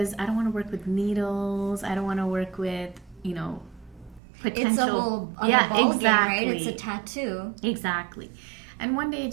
I don't want to work with needles. I don't want to work with potential. It's a whole ball exactly. game, right? It's a tattoo. Exactly. And one day I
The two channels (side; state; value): left; drops out; at 4.2 s